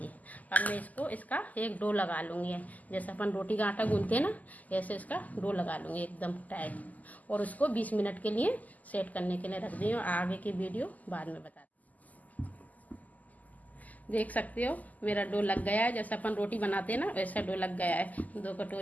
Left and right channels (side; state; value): right; late; 0.079 ms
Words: अब मैं इसका एक डो लगा लूँगी, जैसे अपन रोटी का आटा गूंथते हैं ना, ऐसे इसका डो लगा लूँगी एकदम टाइट। और उसको 20 मिनट के लिए सेट करने के लिए रख दी हूँ। आगे की वीडियो बाद में बता। देख सकते हो मेरा डो लग गया है, जैसे अपन रोटी बनाते हैं ना वैसा डो लग गया है। 2